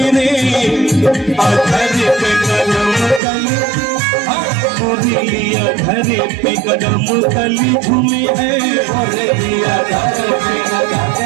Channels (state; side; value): drops out; left; at 3.2 s